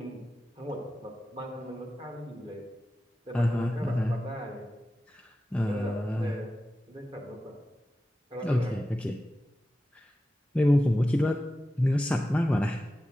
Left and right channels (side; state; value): both; normal; correlation 0.93